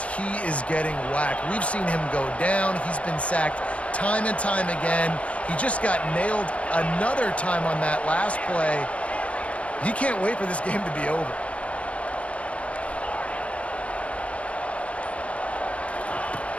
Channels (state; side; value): late; right; 0.063 ms